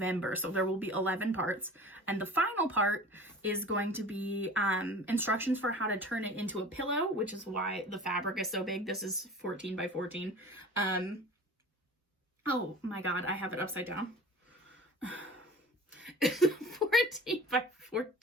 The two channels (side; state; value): both; normal; correlation 0.40